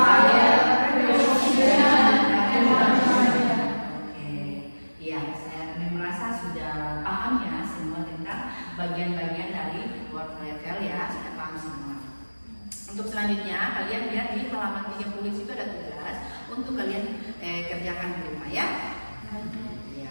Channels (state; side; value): inverted; both; correlation -1.00